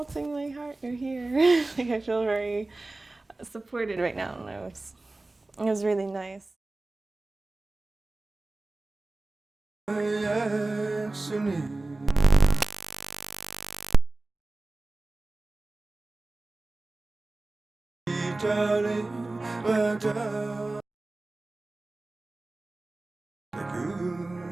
my heart, you're here. Like, I feel very supported right now, and it was really nice.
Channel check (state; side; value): quieter; left; 3.0 dB